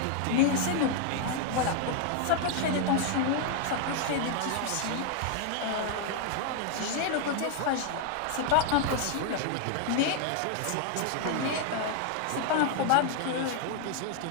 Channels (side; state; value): both; different; correlation 0.00